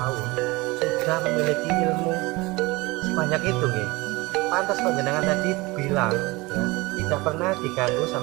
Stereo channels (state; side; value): quieter; left; 22.9 dB